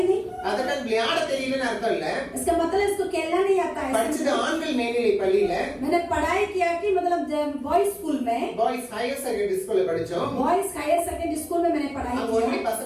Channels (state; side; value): identical; both; correlation 1.00